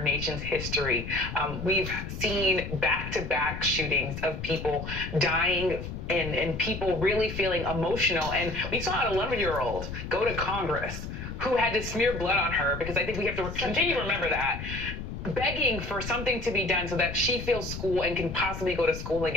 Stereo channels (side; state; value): left; noise; rumble, 7 dB below the sound